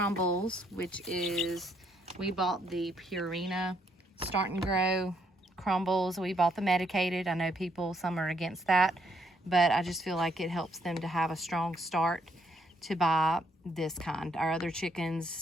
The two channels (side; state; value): both; normal; correlation 0.72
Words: which is, we bought the Purina Start and Grow crumbles. We bought the medicated. I know some are against that, but I just feel like it helps them to have a strong start to buy this kind. Our other